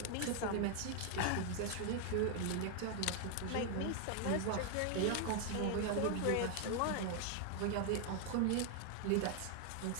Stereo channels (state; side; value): different; both; correlation 0.00